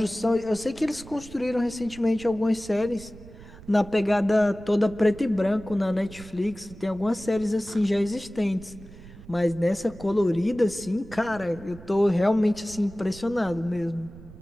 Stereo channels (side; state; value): right; noise; rumble, 18 dB below the sound